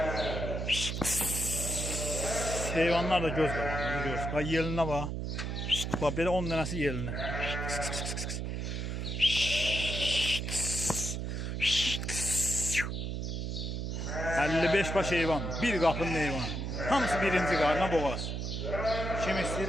Heyvanlar da göz qabağındadır, görürsünüz. Bax yelinə bax. Bax belə 10 dənəsi yelinir. 55 baş heyvan, bir qapının heyvanı. Hamısı birinci qarına boğaz. Kim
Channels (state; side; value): noise; right; hum, 3 dB below the sound